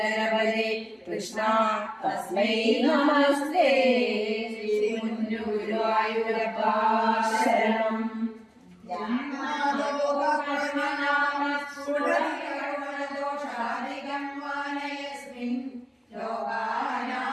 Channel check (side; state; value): both; identical; correlation 1.00